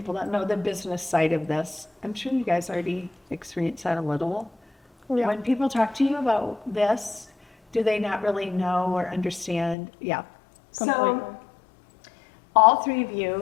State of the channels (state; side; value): drops out; right; at 9.8 s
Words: don't know the business side of this. I'm sure you guys already experienced that a little. Yeah. When people talk to you about this, do they not really know or understand? Yeah. Completely. So all three of